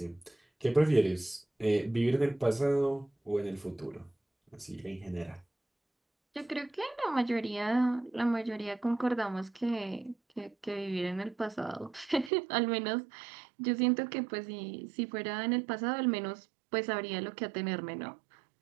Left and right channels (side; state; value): left; drops out; at 12.3 s